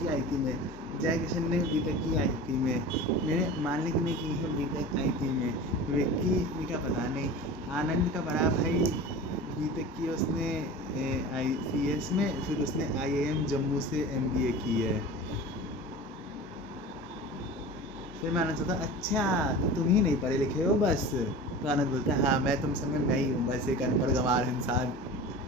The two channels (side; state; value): both; normal; correlation 0.35